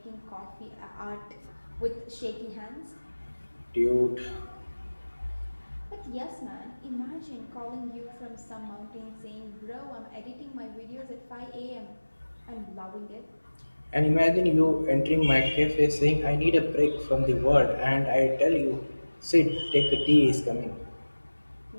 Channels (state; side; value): inverted; both; correlation -1.00